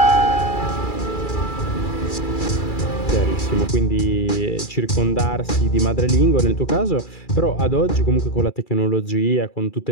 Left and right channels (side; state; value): right; late; 2.3 ms